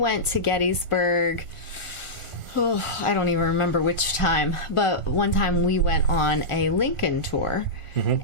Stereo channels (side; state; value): right; late; 1.5 ms